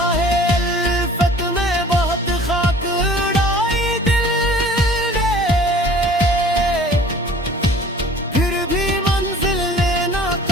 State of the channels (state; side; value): normal; both; correlation 0.48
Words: अल्फत में बहुत खाक उड़ाई दिल ने, फिर भी मंजिल ने ना